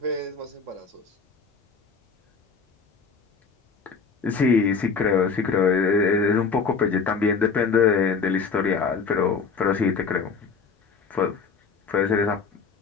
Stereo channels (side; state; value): right; quieter; 5.2 dB